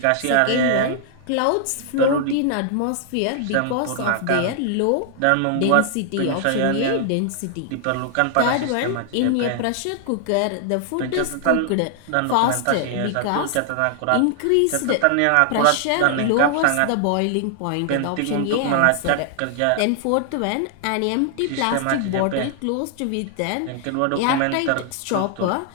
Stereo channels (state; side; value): different; both; correlation 0.00